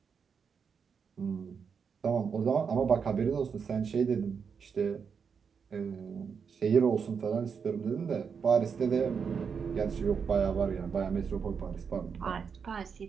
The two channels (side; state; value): left; quieter; 6.3 dB